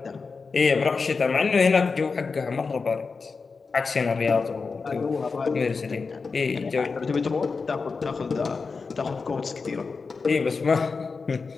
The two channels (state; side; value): quieter; right; 4.7 dB